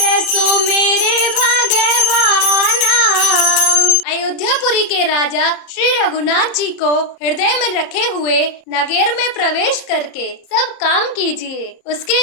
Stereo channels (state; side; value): late; right; 30 ms